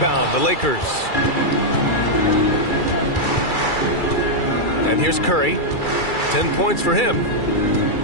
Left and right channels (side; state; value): right; late; 2.3 ms